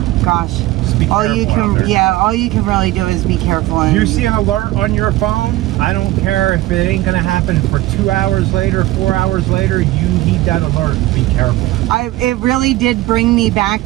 gosh, Just be all you careful out can, there. yeah, all you can really do is be careful. And You see an alert on your phone, I don't care if it ain't gonna happen for 2 hours later, 4 hours later, you need that alert. Be careful. it really did bring me back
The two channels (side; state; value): left; quieter; 16.9 dB